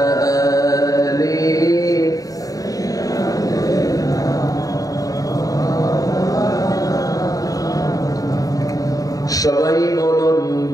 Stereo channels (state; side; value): late; right; 0.17 ms